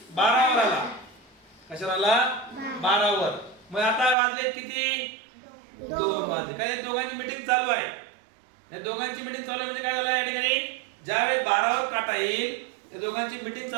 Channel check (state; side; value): drops out; left; at 4.2 s